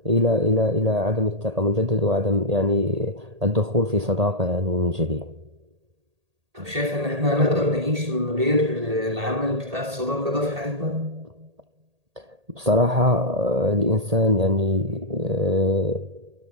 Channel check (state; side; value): late; left; 1.8 ms